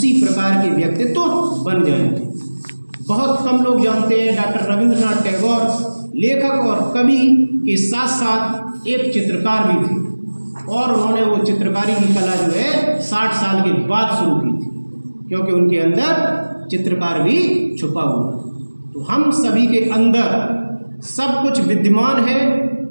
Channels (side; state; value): both; inverted; correlation -1.00